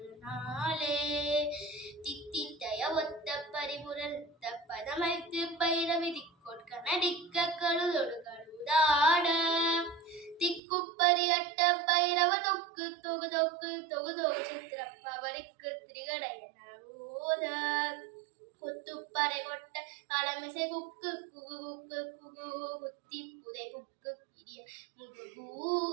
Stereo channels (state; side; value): drops out; left; at 10.6 s